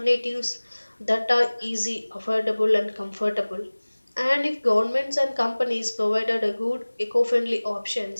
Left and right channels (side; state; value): both; inverted; correlation -1.00